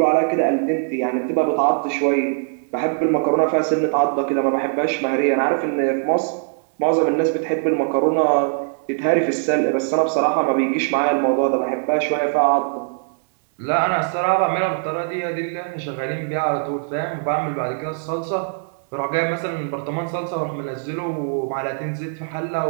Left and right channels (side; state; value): left; silent; digital silence